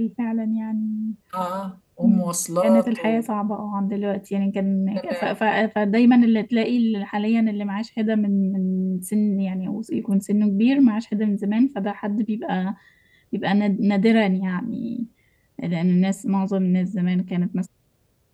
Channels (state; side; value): identical; both; correlation 1.00